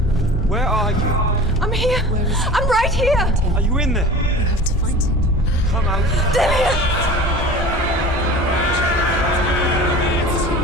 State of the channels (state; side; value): normal; both; correlation 0.39